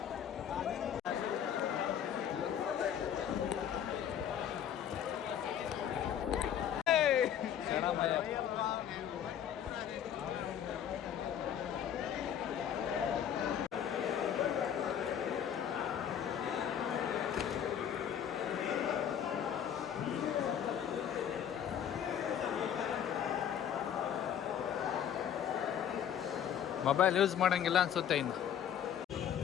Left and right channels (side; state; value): right; quieter; 9.3 dB